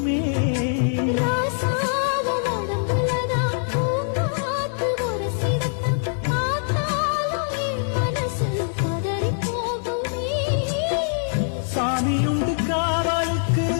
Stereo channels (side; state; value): right; silent; digital silence